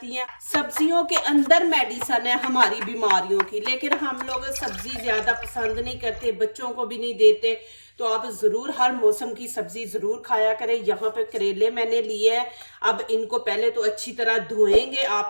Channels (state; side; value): inverted; both; correlation -1.00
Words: हैं। सब्जियों के अंदर मेडिसन है हमारी बीमारियों की, लेकिन हम लोग सब्जी ज़्यादा पसंद नहीं करते, बच्चों को भी नहीं देते। तो आप ज़रूर हर मौसम की सब्ज़ी ज़रूर खाया करें। यहाँ पे करेले मैंने लिए हैं। अब इनको पहले तो अच्छी तरह धोएंगे।